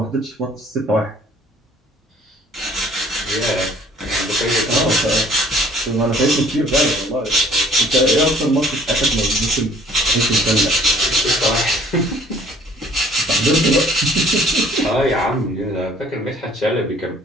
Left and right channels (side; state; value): both; normal; correlation 0.56